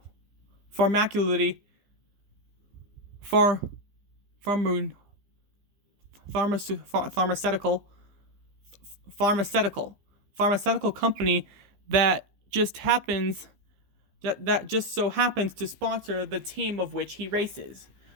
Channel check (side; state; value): left; late; 15 ms